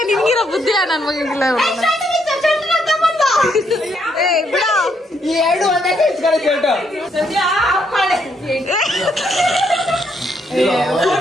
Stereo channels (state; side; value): normal; both; correlation 0.74